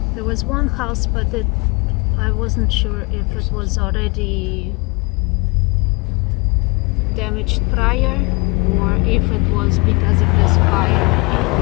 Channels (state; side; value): quieter; right; 29.1 dB